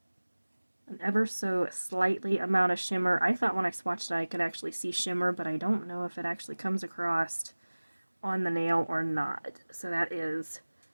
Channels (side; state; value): both; inverted; correlation -1.00